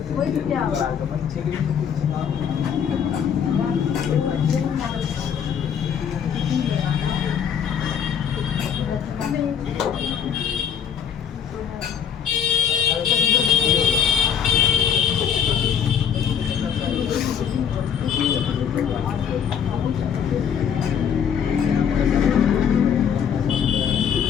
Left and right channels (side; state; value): right; quieter; 8.0 dB